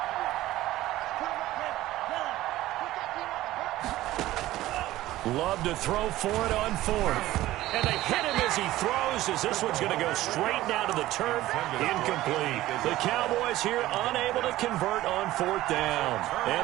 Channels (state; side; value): quieter; left; 15.9 dB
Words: Love to throw for it on fourth. And they hit him as he throws, as this one's going to go straight down to the turf. Incomplete. The Cowboys here unable to convert on fourth down.